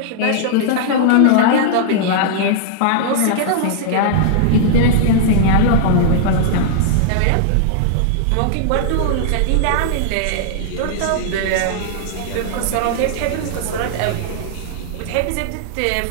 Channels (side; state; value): both; different; correlation -0.01